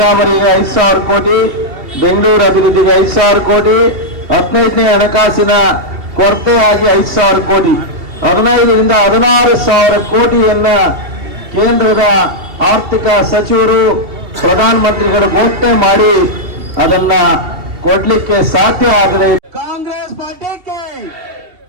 5,000 ಕೋಟಿ, ಬೆಂಗಳೂರು ಅಭಿವೃದ್ಧಿಗೆ 5,000 ಕೋಟಿ, 15ನೇ ಹಣಕಾಸಿನ ಕೊರತೆಯಾಗಿ 5,000 ಕೋಟಿ, 15ರಿಂದ 16,000 ಕೋಟಿಯನ್ನ ಕೇಂದ್ರದ ಆರ್ಥಿಕ ಸಚಿವರು, ಪ್ರಧಾನಮಂತ್ರಿಗಳು ಘೋಷಣೆ ಮಾಡಿ ಅದನ್ನ ಕೊಡ್ಲಿಕ್ಕೆ ಸಾಧ್ಯ ಆಗಿದೆ. ಕಾಂಗ್ರೆಸ್ ಪಾರ್ಟಿಗೆ,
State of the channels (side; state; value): left; late; 2.8 ms